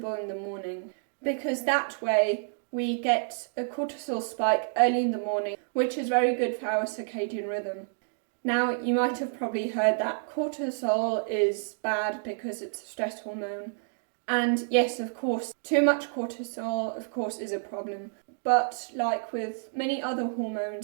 in the morning, because that way we get a cortisol spike early in the morning, which is very good for our circadian rhythm. Now, you might have probably heard that cortisol is bad because it's a stress hormone. And yes, of course, too much cortisol, of course, is a problem. But like with many other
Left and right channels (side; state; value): left; silent; digital silence